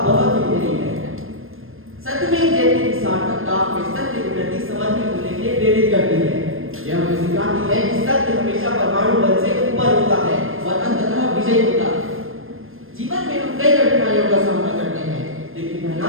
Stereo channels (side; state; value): left; late; 0.60 ms